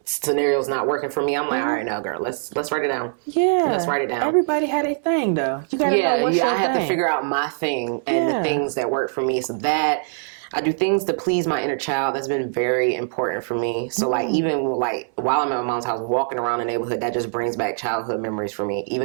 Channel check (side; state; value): left; silent; 64 dB below the other